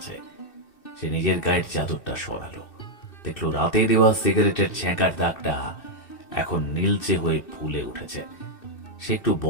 সে নিজের গায়ের চাদরটা সরালো, দেখলো রাতে দেওয়া সিগারেটের ছ্যাঁকার দাগটা এখন নীলচে হয়ে ফুলে উঠেছে। সে একটু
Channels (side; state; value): right; late; 2.6 ms